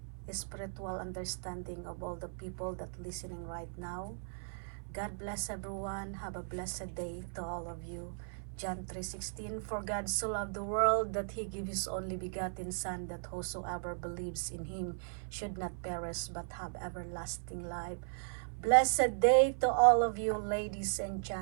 spiritual understanding of all the people that listening right now. God bless everyone. Have a blessed day to all of you. John 3:16, for God so loved the world that he gave his only begotten Son, that whosoever believes in him should not perish but have everlasting life. Blessed day to all of you, ladies and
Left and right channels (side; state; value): left; silent; 53 dB below the other